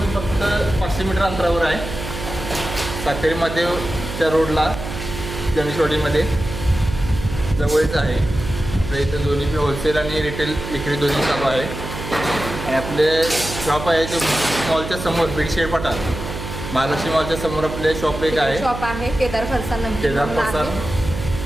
फक्त 500 मीटर अंतरावर आहे. सातेरी महादेवच्या रोडला गणेशवाडीमध्ये जवळच आहे. आपल्या इथं दोन्ही होलसेल आणि रिटेल विक्री दोन्ही चालू आहे. आणि आपले शॉप आहे ते मॉलच्या समोर बिडशेड पठार महालक्ष्मी मॉलच्या समोर आपले शॉप एक आहे. शॉप आहे केदार फरसाण. केदार फरसाण.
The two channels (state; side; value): noise; right; hum, 8 dB below the sound